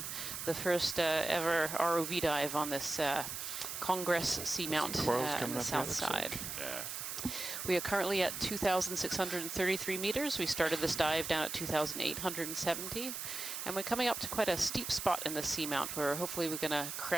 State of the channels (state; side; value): noise; right; hiss, 5 dB below the sound